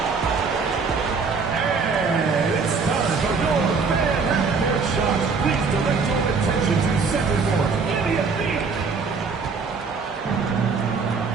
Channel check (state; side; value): quieter; left; 4.9 dB